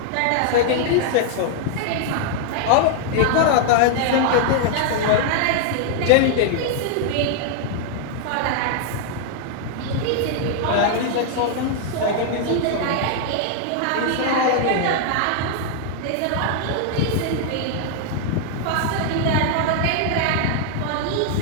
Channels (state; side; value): different; both; correlation 0.00